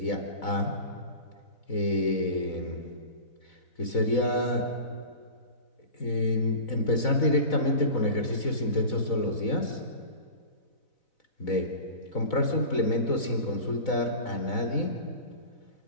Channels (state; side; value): late; right; 4.0 ms